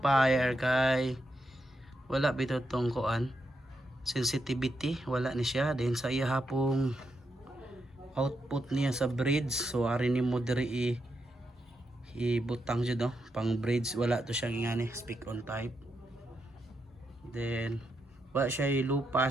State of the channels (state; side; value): normal; both; correlation 0.83